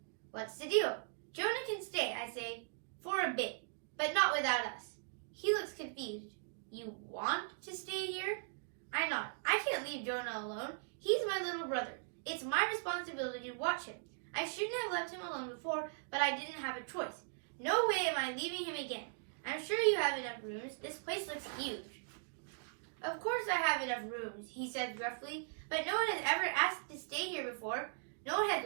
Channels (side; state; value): left; silent; digital silence